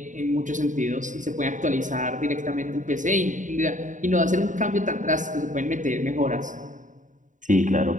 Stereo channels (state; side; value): late; left; 0.37 ms